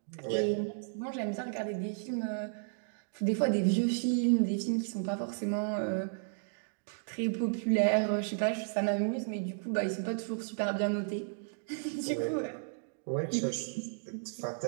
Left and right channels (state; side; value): silent; left; digital silence